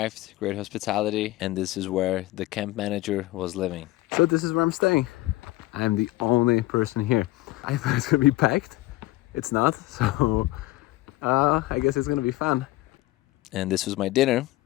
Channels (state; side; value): quieter; right; 18.2 dB